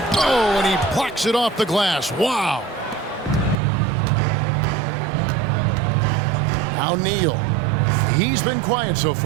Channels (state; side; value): drops out; left; at 3.6 s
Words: Oh, and he plucks it off the glass. Wow. Now Neal. He's been quiet so